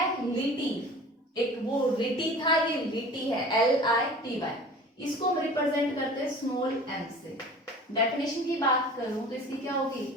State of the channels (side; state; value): both; normal; correlation 0.42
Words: एक वो लिटी था, ये लिटी है LITY, इसको हम रिप्रेजेंट करते हैं स्मॉल m से। डेफिनेशन की बात करूं तो इसकी क्या